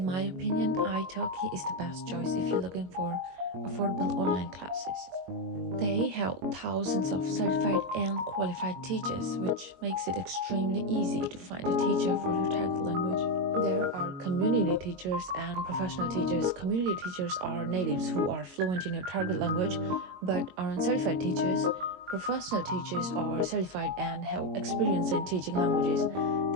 my opinion, italki is the best choice if you're looking for affordable online classes. They have thousands of certified and qualified teachers, which makes it extremely easy to find a teacher for your target language. There are community teachers and professional teachers. Community teachers are natives who are fluent in your target language but aren't certified teachers. Professional teachers are certified and have experience in teaching languages.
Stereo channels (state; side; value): late; left; 22 ms